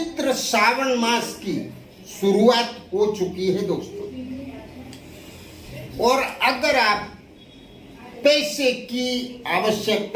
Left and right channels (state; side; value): identical; both; correlation 1.00